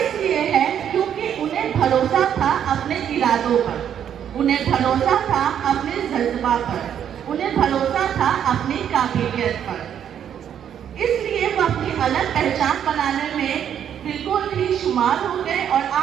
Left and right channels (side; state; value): left; quieter; 9.2 dB